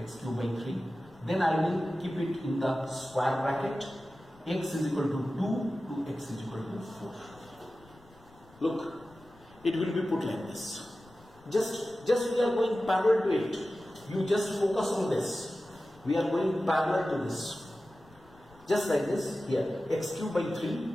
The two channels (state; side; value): noise; left; rumble, 26 dB below the sound